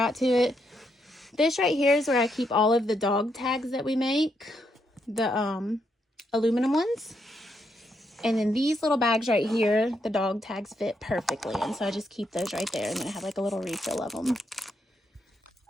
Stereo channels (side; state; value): both; normal; correlation 0.78